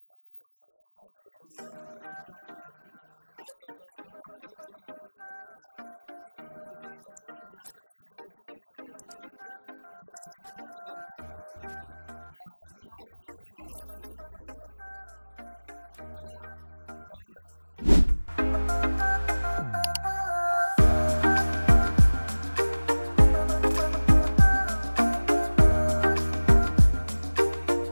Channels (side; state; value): both; inverted; correlation -1.00